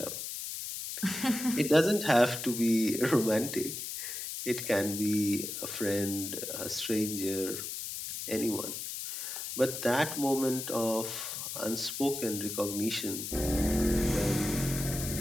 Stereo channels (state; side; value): noise; left; hiss, 6 dB below the sound